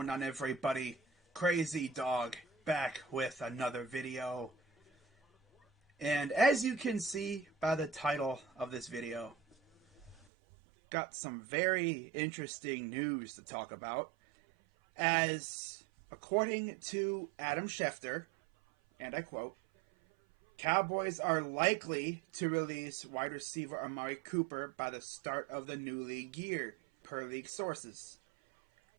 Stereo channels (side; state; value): left; drops out; at 10.2 s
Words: on, everybody? Crazy Dog back with another video. And as you can see by the title of this video, got some very interesting news to talk about. As according to Adam Schefter, and I quote, Cowboys are likely to release wide receiver Amari Cooper by the start of the new league year, per league sources.